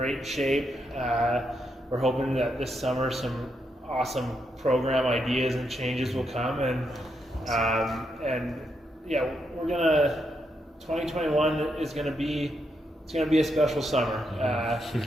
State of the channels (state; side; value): normal; both; correlation 0.80